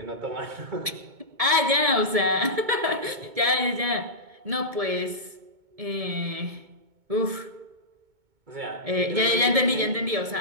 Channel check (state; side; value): late; left; 1.7 ms